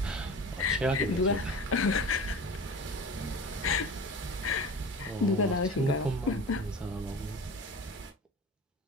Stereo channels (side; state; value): both; normal; correlation 0.35